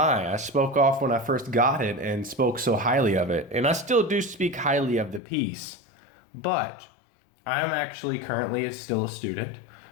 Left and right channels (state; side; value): drops out; right; at 5.2 s